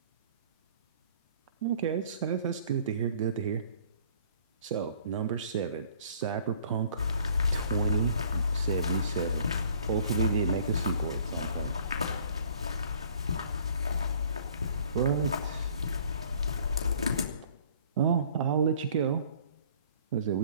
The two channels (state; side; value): inverted; both; correlation -0.55